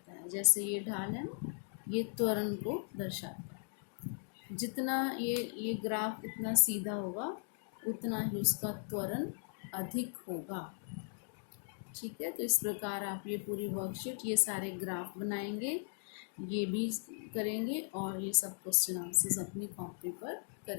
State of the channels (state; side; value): silent; right; digital silence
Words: है। जैसे ये ढाल है ना, ये त्वरण को दर्शाता है। जितना ये ग्राफ इतना सीधा होगा उतना ही उसका त्वरण अधिक होगा। ठीक है, तो इस प्रकार आप ये पूरी वर्कशीट, ये सारे ग्राफ बनाएंगे, ये भी करेंगे, और ये सब क्वेश्चन आंसर्स अपनी कॉपी पर